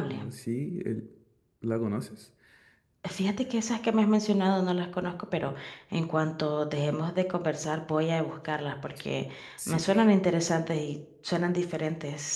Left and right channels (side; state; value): both; identical; correlation 1.00